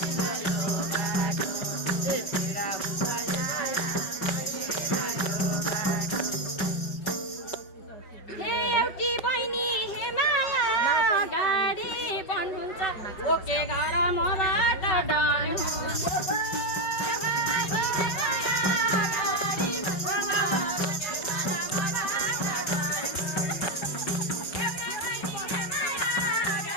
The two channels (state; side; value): late; right; 5.2 ms